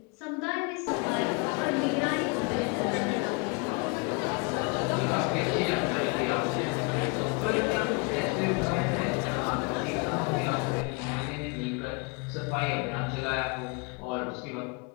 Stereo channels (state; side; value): quieter; right; 31.2 dB